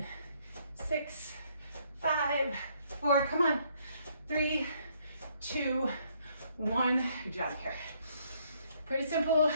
6, 5, 4, come on. 3, 2, 1, good job here. Pretty simple.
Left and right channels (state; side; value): inverted; both; correlation -0.68